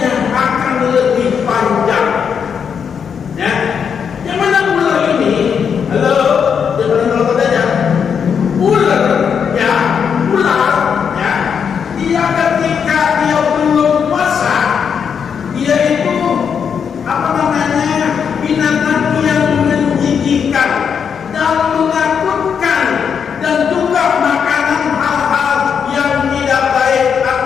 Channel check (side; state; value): right; quieter; 7.0 dB